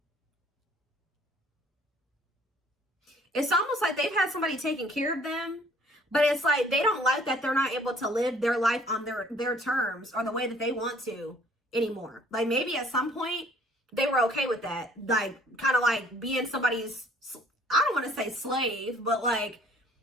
It's almost like they've had somebody taking care of them, but it's like they don't like that they're not able to live their life on their terms or the way that they want to anymore. Like maybe at some point they were okay with that. Like kind of like being somebody's, I don't want to say slave, but like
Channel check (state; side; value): normal; both; correlation 0.57